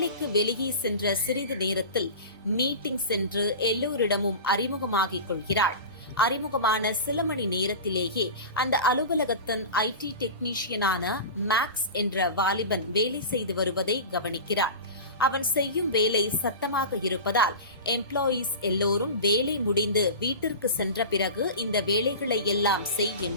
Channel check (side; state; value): both; inverted; correlation -0.31